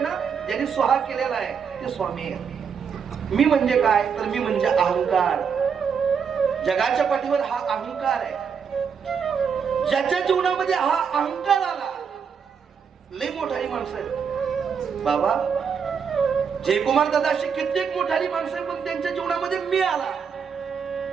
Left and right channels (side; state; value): left; quieter; 6.6 dB